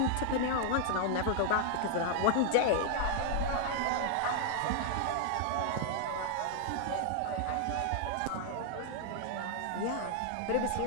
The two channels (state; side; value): different; both; correlation 0.00